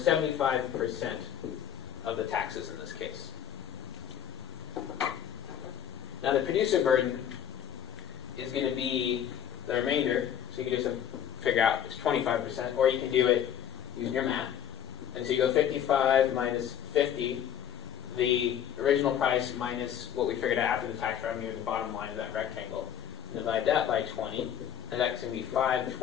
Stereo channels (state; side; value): quieter; right; 9.6 dB